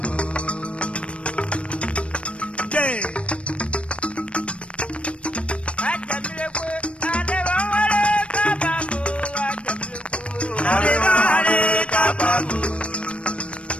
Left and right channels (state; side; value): late; right; 0.061 ms